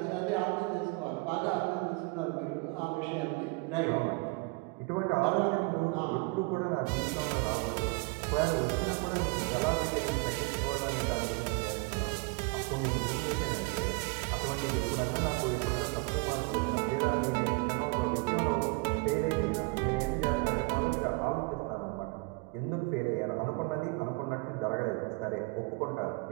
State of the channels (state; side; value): quieter; left; 28.5 dB